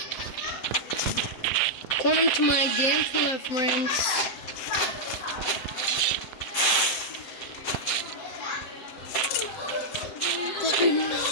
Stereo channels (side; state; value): right; late; 7.7 ms